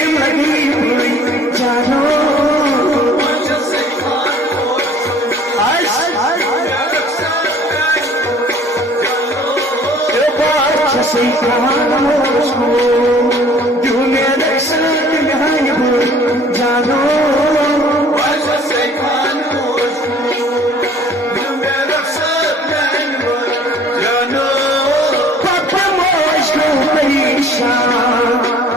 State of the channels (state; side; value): normal; both; correlation 0.53